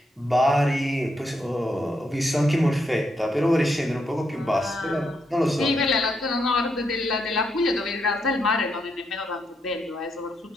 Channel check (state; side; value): normal; both; correlation 0.79